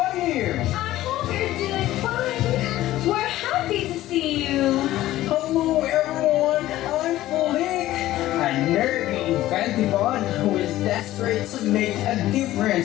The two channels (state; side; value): quieter; right; 15.1 dB